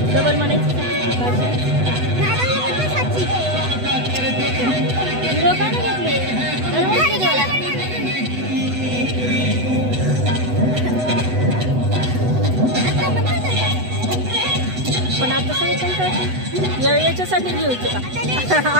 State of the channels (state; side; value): late; left; 8.1 ms